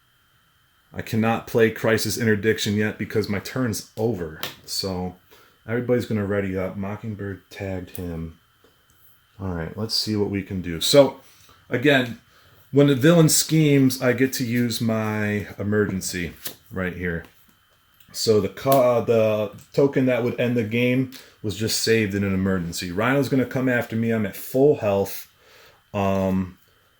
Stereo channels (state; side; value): identical; both; correlation 1.00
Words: I cannot play Crisis Interdiction yet because my turn's over. So everybody's going to ready up. Mockingbird tagged him. All right, let's see what we can do. So again, when the villain schemes, I get to use my emergency right here. So the token that would end the game was just saved in an emergency. Rhino's going to come after me. I'm at full health. I